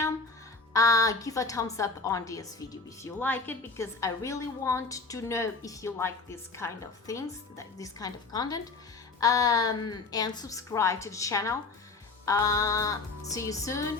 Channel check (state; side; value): quieter; right; 4.0 dB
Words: Give a thumbs up on this video if you like it, because I really want to know if you like this kind of things, this kind of content, and subscribe to the channel. See you